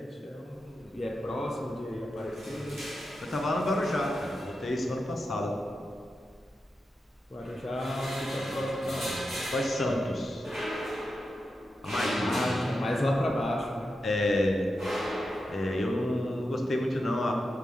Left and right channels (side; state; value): both; normal; correlation 0.89